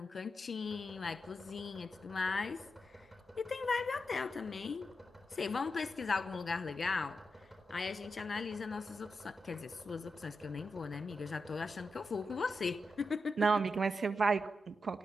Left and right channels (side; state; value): both; normal; correlation 0.87